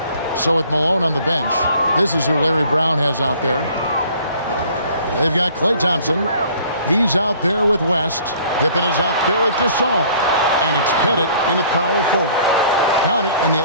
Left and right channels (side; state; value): both; inverted; correlation -0.54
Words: So with Malone on the bench, this is who Larry Brown has out there. They've got Klay Thompson. He's out there with West. Pippen is out there with GASOL. And it's Pettit in at power forward. Count it, and the